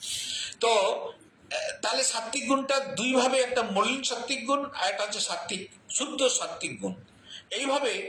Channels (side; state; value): both; identical; correlation 1.00